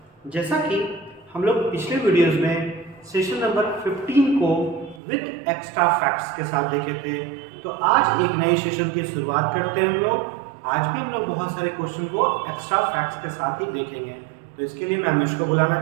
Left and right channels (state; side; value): drops out; left; at 5.0 s